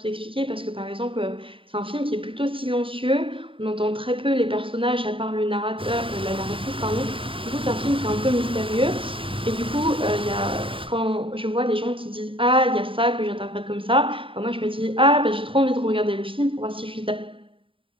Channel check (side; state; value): left; late; 0.25 ms